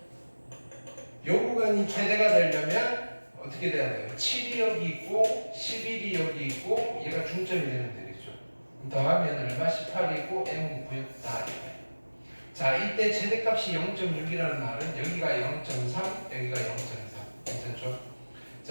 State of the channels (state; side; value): inverted; both; correlation -1.00